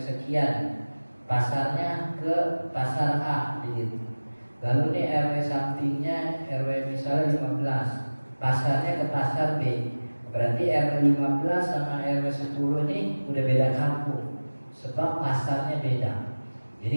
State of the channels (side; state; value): both; inverted; correlation -1.00